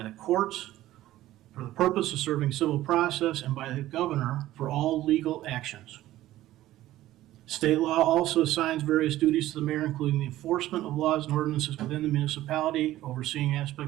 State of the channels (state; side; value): quieter; left; 14.9 dB